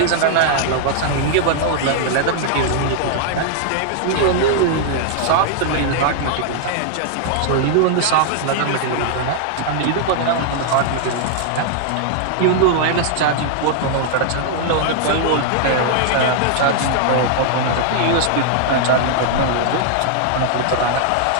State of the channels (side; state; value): both; different; correlation -0.01